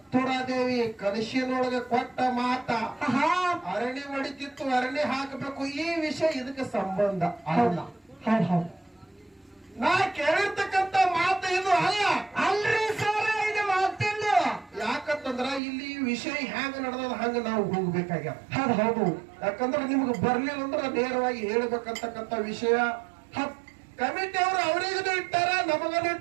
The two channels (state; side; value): drops out; left; at 15.6 s